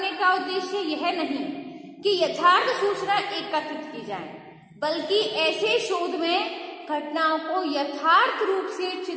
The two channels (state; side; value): identical; both; correlation 1.00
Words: का उद्देश्य यह नहीं कि यथार्थ सूचना एकत्रित की जाए, बल्कि ऐसे शोध में घटनाओं को यथार्थ रूप से